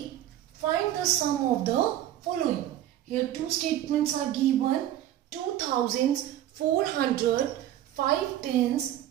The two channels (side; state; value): left; quieter; 12.4 dB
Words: find the sum of the following. Here two statements are given. 2 thousands, 400, 5 tens,